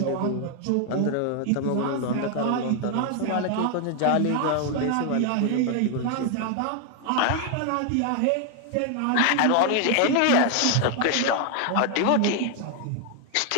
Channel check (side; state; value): both; different; correlation 0.00